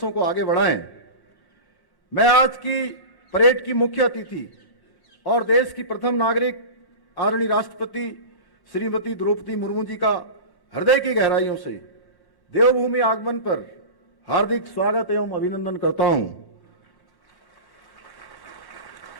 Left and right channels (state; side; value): late; right; 1.1 ms